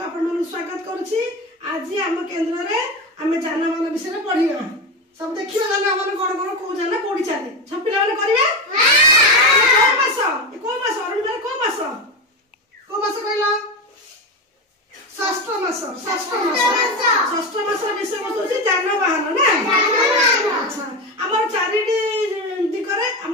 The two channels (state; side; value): normal; both; correlation 0.18